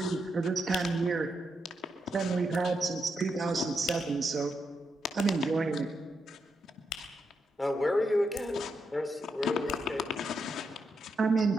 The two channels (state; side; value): normal; both; correlation 0.82